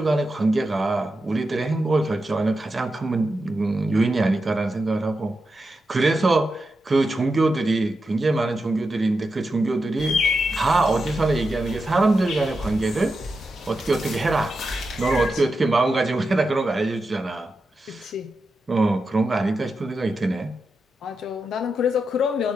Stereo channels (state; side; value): normal; both; correlation 0.88